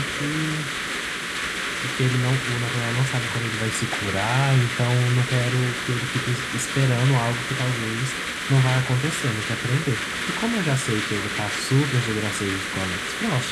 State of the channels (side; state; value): both; identical; correlation 1.00